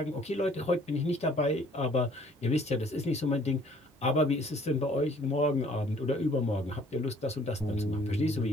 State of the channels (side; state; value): both; normal; correlation 0.58